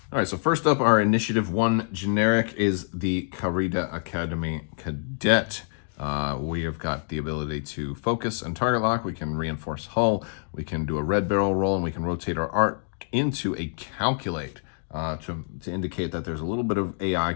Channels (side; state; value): right; silent; digital silence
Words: All right, so first up, our Initiative 1 generic is the Carida Academy Cadet. We have got the ability to focus and target lock. We can reinforce hull. We can do a red barrel roll, and we can rotate our arc into a calculate to indicate that there's a little bit of AI